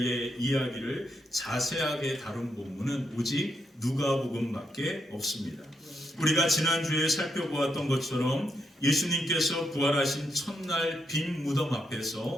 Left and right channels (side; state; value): both; normal; correlation 0.81